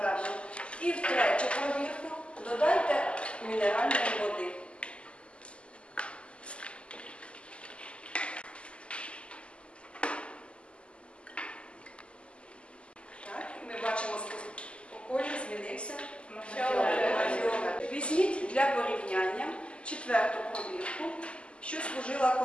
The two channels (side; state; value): right; late; 0.054 ms